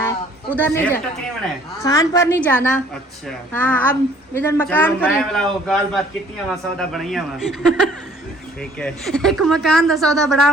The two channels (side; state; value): both; normal; correlation 0.57